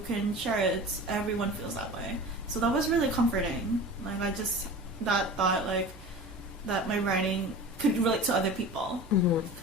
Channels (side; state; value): both; normal; correlation 0.36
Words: can share it. Everyone feels that way. So that was really comforting. Like, that thought, like, that my writing could relate to other people.